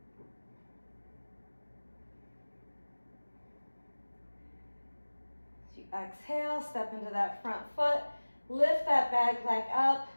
As you exhale, step into that front foot, lift that back leg up.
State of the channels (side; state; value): both; inverted; correlation -1.00